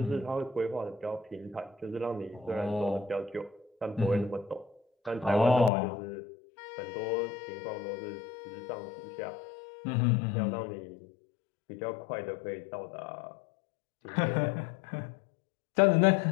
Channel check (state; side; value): drops out; right; at 5.7 s